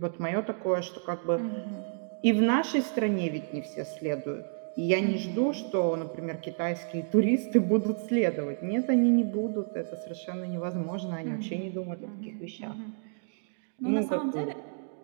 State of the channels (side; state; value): left; silent; digital silence